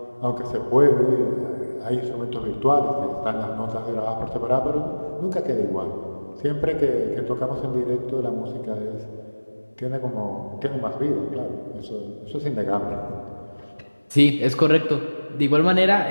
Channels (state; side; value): inverted; both; correlation -1.00